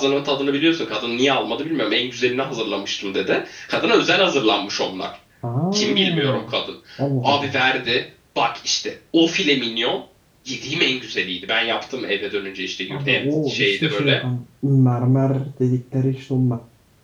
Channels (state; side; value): identical; both; correlation 1.00